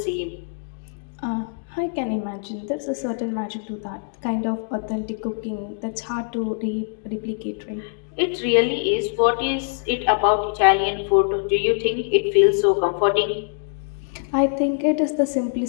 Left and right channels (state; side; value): silent; right; digital silence